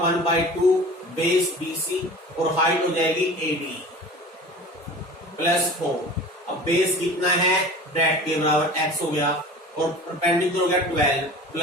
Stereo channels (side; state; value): both; normal; correlation 0.39